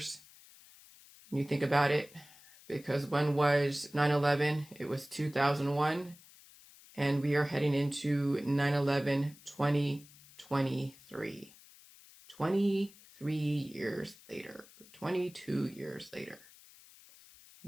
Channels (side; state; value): left; noise; hiss, 23 dB below the sound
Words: When you think about it, because when was 9/11? It was 2001, and we are heading into 9/11 2023. 23 years later, 22 years later.